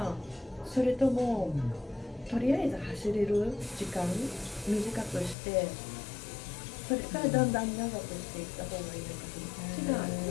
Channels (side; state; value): right; drops out; at 5.4 s